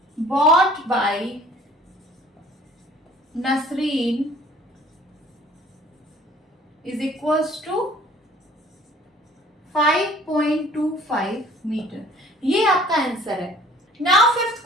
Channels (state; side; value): normal; both; correlation 0.53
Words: bought by Nasreen is equals to 5.25 metre. ये आपका आंसर है। Now fifth